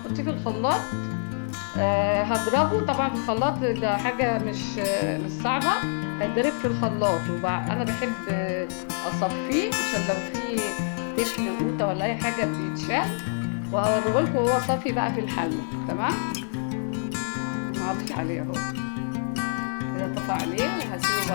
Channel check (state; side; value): silent; right; 61 dB below the other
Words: في الخلاط. هضربه طبعا في الخلاط، ده حاجه مش صعبه. هيتضرب في الخلاط. انا بحب اصفيه عشان لو في تفل قوطه ولا اي حاجه بيتشال. وهوريهولكم وهو صافي بقى في الحله. تمام. انا هطفي عليه اهو كده طفى عليه وهسيبه